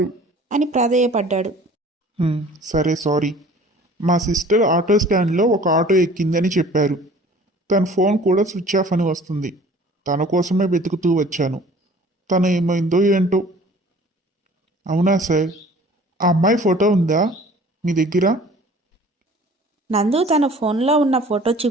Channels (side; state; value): both; normal; correlation 0.49